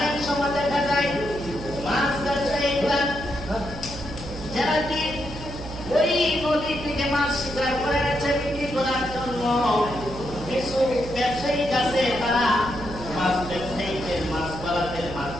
সময় দেখা যায় মাছ ব্যবসায়ীরা যারা কি ওই নদী থেকে মাছ শিকার করে এনেছে বিক্রি করার জন্য, কিছু ব্যবসায়ী আছে তারা মাছ ব্যবসায়ীদের মাছ পালাদের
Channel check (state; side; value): noise; right; hum, 11 dB below the sound